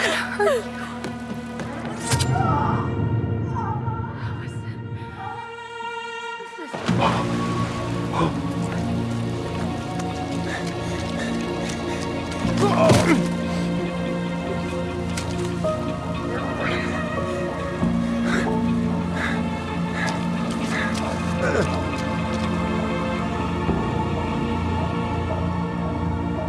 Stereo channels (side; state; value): both; identical; correlation 1.00